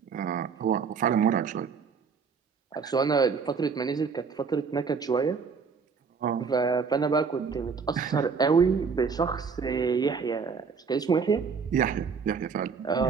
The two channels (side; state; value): left; quieter; 5.6 dB